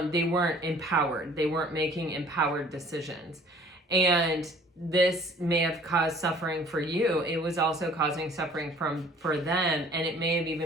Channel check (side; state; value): both; normal; correlation 0.53